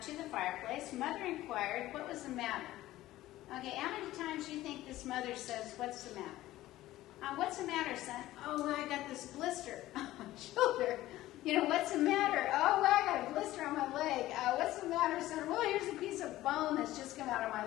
to the fireplace. Mother inquired, what was the matter? Okay, how many times do you think this mother says, what's the matter? What's the matter, son? Oh, well, I got this blister on my shoulder. You know, what's the matter? Oh, well, I got a blister on my leg. What's the matter, son? Well, here's a piece of bone that's just come out of my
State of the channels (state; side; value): quieter; right; 15.7 dB